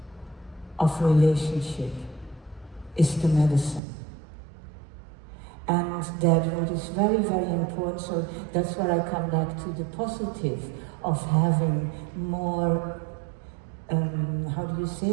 of relationship is the medicine. And that what is very, very important, so that's where I come back to the positive of having more, how do you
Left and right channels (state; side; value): drops out; left; at 3.8 s